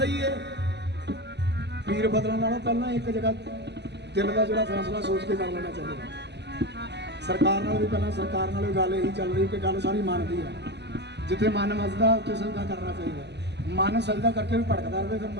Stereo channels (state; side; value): late; left; 0.50 ms